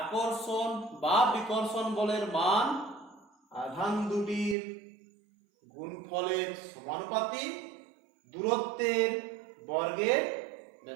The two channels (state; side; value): drops out; left; at 4.5 s